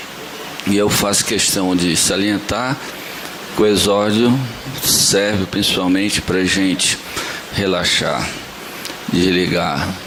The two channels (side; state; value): both; identical; correlation 1.00